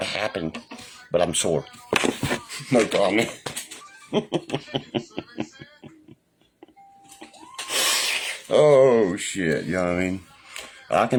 happened, but I'm sore. No comment. Oh shit, you know what I mean? I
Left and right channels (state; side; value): identical; both; correlation 1.00